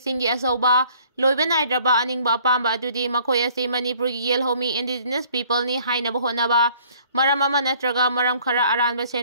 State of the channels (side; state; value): both; inverted; correlation -0.57